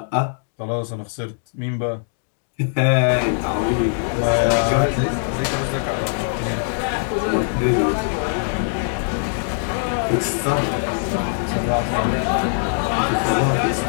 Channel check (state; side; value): silent; right; digital silence